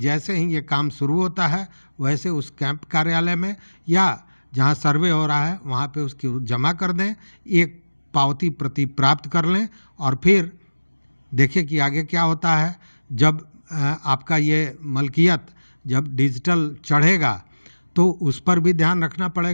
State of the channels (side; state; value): both; inverted; correlation -1.00